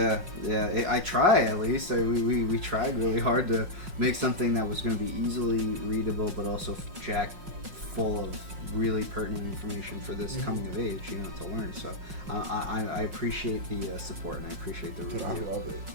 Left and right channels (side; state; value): left; late; 5.5 ms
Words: I try at least. We tried really hard to make something that was going to be easily readable, but also jack full of really pertinent information for this coming of age, to learn. So I appreciate the support, and I appreciate the review. Dude, I love it.